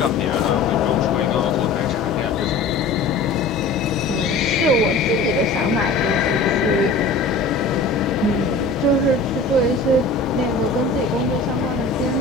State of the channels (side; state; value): right; quieter; 3.6 dB